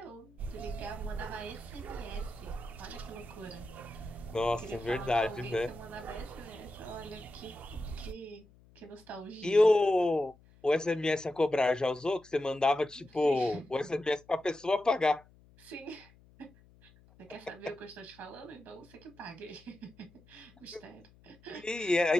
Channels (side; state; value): left; noise; hum, 27 dB below the sound